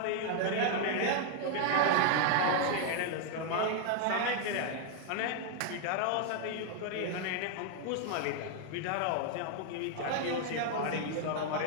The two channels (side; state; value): both; different; correlation 0.00